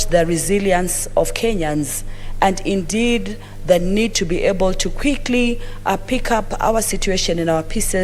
the resilience of Kenyans and indeed the need to be able to quickly pick up our situation in our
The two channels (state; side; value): identical; both; correlation 1.00